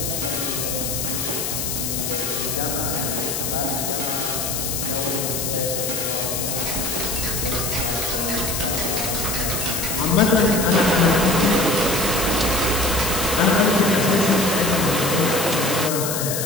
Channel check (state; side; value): noise; left; hiss, 2 dB below the sound